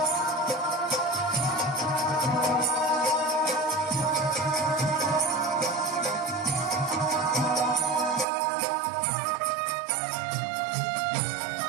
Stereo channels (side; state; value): left; drops out; at 8.2 s